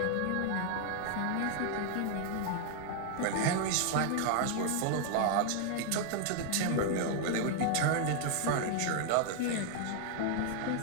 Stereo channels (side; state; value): both; different; correlation 0.00